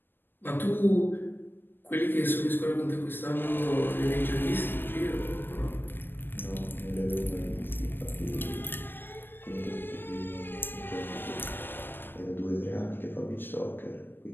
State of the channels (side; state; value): right; late; 0.096 ms